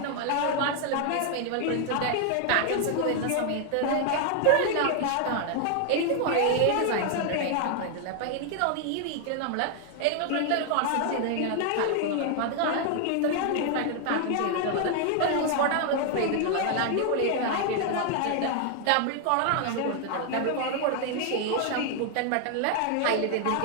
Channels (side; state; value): both; different; correlation 0.00